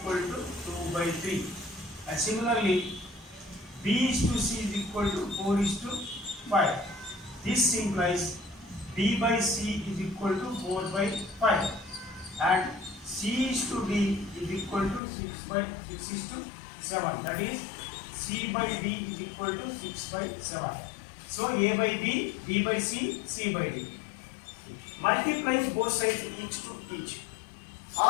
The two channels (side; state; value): right; drops out; at 15.0 s